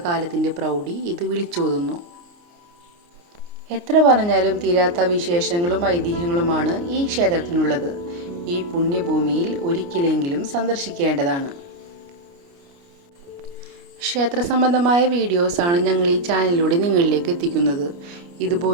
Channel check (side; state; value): left; late; 29 ms